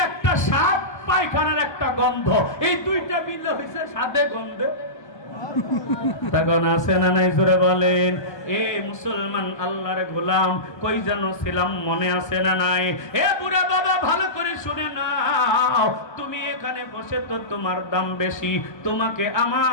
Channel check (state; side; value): late; right; 1.2 ms